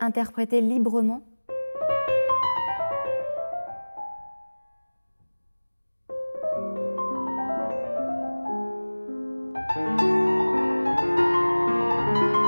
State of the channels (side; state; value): both; inverted; correlation -1.00